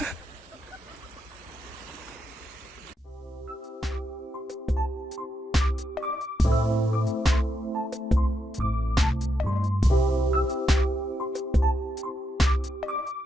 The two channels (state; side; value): normal; both; correlation 0.83